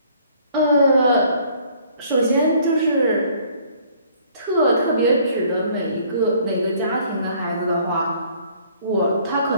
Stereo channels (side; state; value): both; inverted; correlation -0.59